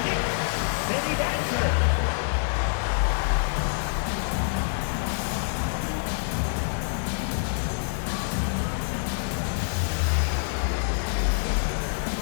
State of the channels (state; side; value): silent; right; digital silence